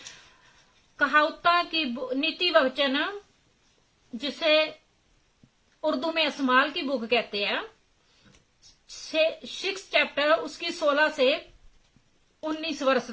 कहावता की नीति वचन, जिसे उर्दू में अस्माल की बुक कहते हैं, 6 चैप्टर उसकी 16 से 19 वर्ष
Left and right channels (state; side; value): identical; both; correlation 1.00